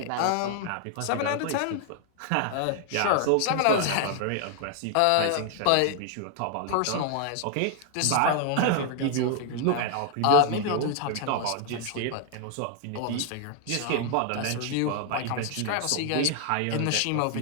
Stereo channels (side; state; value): both; different; correlation 0.00